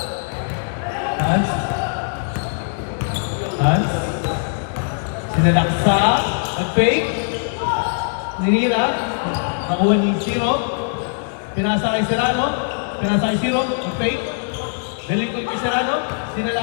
Hans. Sinalaksa. Nag-fake. Ninira. Nakuha ni Zero. Pinasa kay Serrano. Nag-fake. Daling kay Serrano.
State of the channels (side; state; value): right; silent; 65 dB below the other